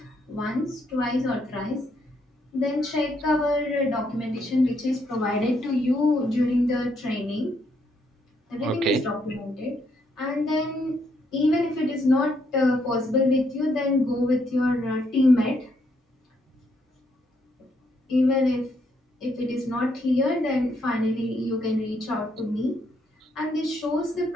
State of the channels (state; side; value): normal; both; correlation 0.74